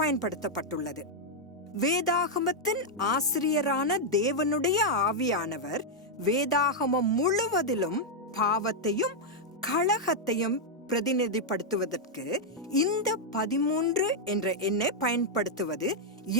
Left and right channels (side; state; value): both; normal; correlation -0.03